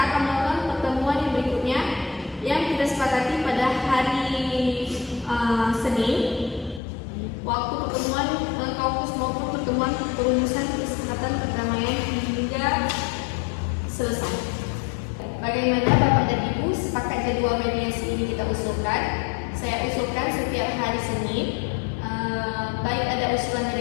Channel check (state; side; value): drops out; right; at 6.8 s